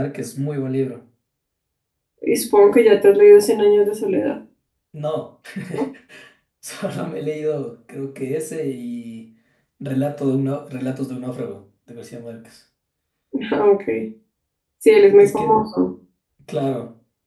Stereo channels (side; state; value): both; identical; correlation 1.00